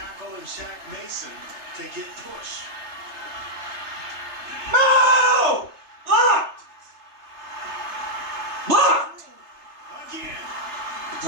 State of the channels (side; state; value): left; late; 3.3 ms